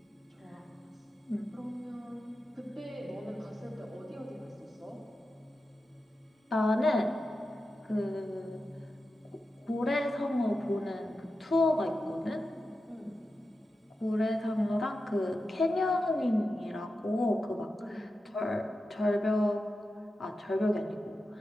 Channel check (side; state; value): both; normal; correlation 0.91